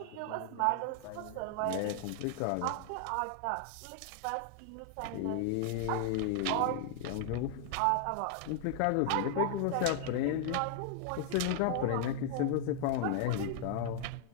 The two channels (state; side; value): different; both; correlation 0.00